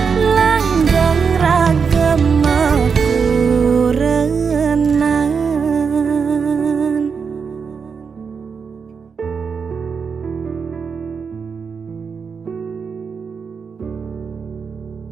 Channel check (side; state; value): left; quieter; 5.9 dB